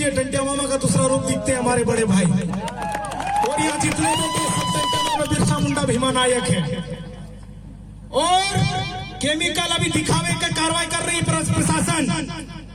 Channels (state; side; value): identical; both; correlation 1.00